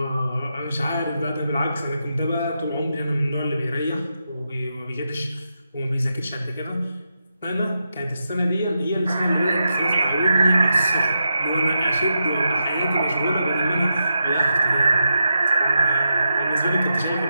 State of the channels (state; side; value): inverted; both; correlation -0.86